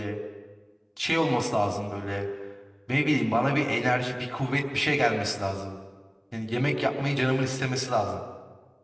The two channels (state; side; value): identical; both; correlation 1.00